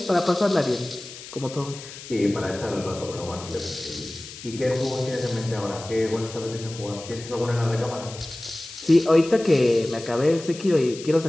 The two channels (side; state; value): left; noise; hiss, 14 dB below the sound